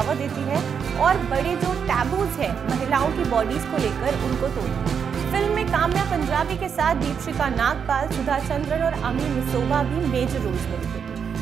देती है और बड़े जो टैबूज है महिलाओं की बॉडीज को लेकर उनको तोड़ती है। फिल्म में काम्या पंजाबी के साथ दीपशिका नागपाल, सुधा चंद्रन और अमी मिसोवा भी मेजर रोल्स में दिखे।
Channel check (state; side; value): quieter; left; 7.0 dB